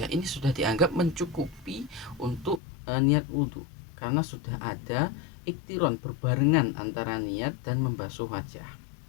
ini sudah dianggap mencukupi untuk niat wudhu, karena sudah ada iktiron berbarengan antara niat dan membasuh wajah.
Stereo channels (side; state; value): right; drops out; at 2.6 s